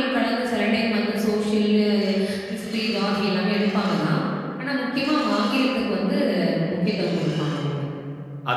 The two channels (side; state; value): both; identical; correlation 1.00